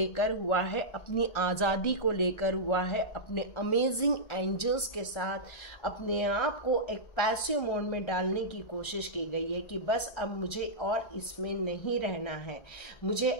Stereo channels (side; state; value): right; late; 1.4 ms